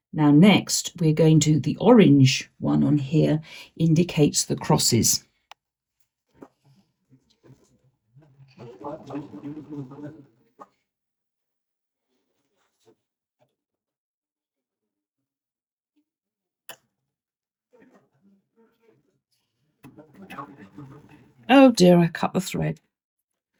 now next we're going to, the orange one on here indicates the crosses. Oh dear, I cut the thread.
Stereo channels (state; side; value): identical; both; correlation 1.00